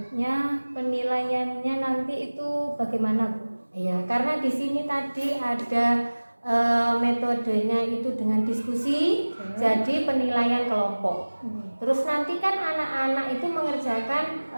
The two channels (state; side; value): inverted; both; correlation -1.00